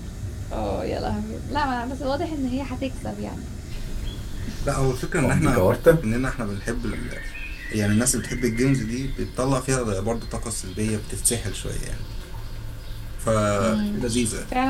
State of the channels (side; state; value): both; identical; correlation 1.00